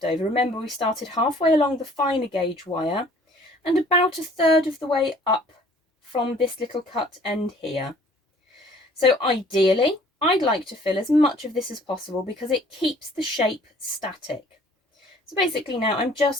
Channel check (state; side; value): normal; both; correlation 0.55